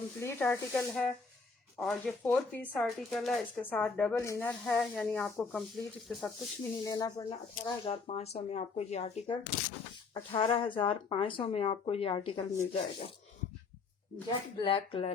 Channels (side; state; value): right; quieter; 4.6 dB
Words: आर्टिकल है, और ये 4 पीस आर्टिकल है, इसके साथ डबल इनर है, यानी आपको कंप्लीट इसके साथ कुछ भी नहीं लेना पड़ना। 18,500 में आपको ये आर्टिकल 18,500 में आपको ये आर्टिकल मिल जाएगा। जेट ब्लैक